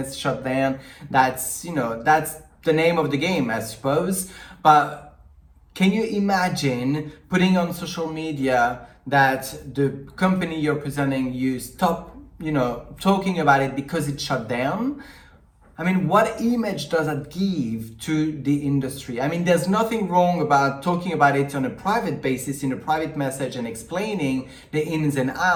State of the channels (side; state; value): both; identical; correlation 1.00